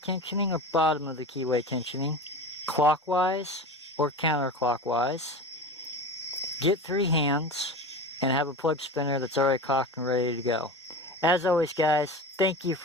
or bottom of the keyway tensioning, clockwise or counterclockwise. Get 3 hands and have a plug spinner that's already cocked and ready to go. As always, guys, thank you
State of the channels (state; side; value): normal; both; correlation 0.30